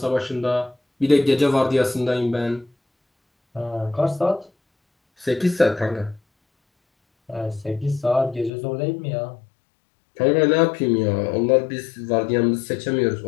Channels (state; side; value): drops out; right; at 8.5 s